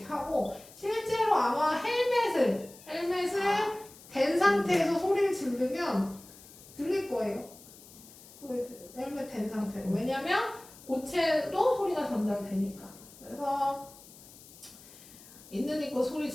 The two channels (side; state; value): left; noise; hiss, 20 dB below the sound